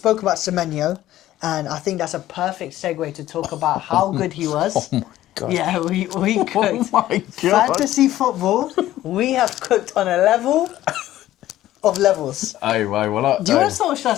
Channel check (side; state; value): right; quieter; 14.1 dB